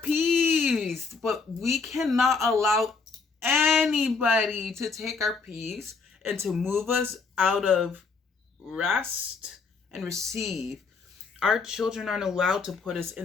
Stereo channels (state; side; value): quieter; right; 4.7 dB